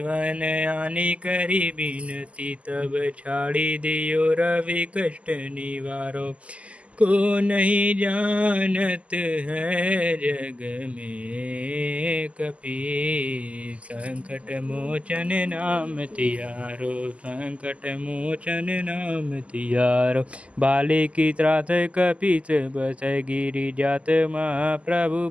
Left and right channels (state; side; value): late; left; 0.063 ms